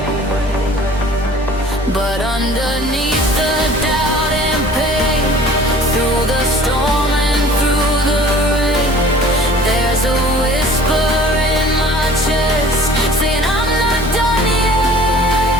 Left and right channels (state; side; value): normal; both; correlation 0.48